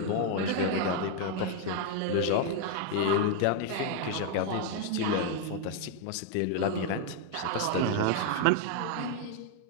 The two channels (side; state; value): both; different; correlation 0.00